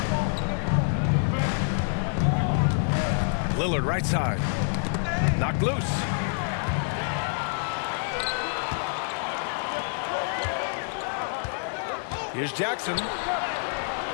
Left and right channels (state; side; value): silent; right; 60 dB below the other